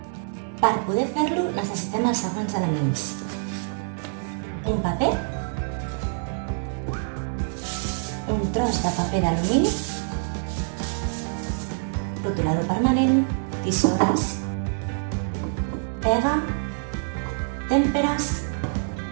Per poder fer-lo necessitem els següents elements. Un paper, un tros de paper d'alumini, rotulador permanent, tisores, pega, tèmperes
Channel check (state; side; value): silent; left; digital silence